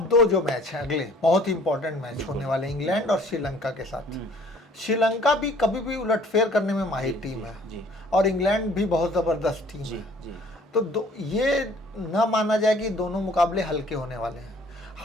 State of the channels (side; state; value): both; normal; correlation 0.55